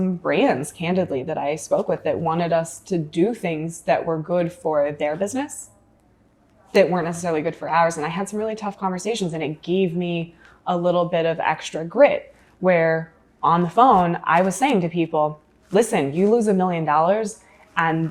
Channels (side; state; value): both; identical; correlation 1.00